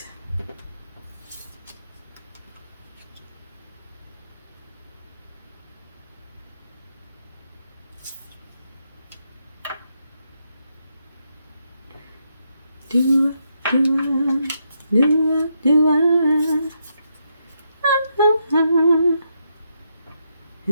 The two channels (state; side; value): inverted; both; correlation -0.80